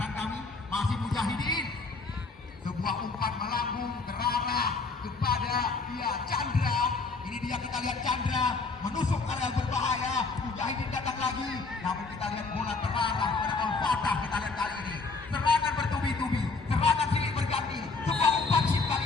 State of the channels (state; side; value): quieter; right; 4.0 dB